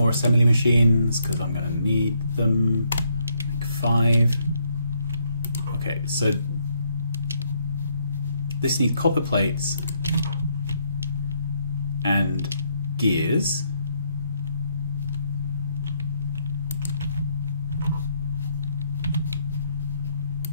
assembly machines because I'm going to need them. Make 5. Okay, so this needs copper plates and gears.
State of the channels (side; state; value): both; inverted; correlation -0.73